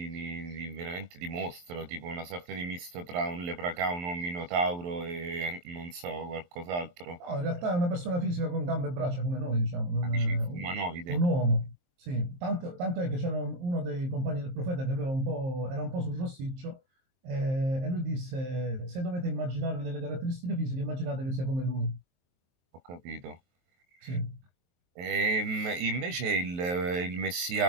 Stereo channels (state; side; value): late; left; 23 ms